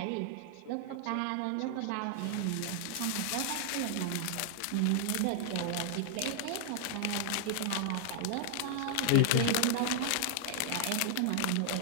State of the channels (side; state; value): both; different; correlation 0.00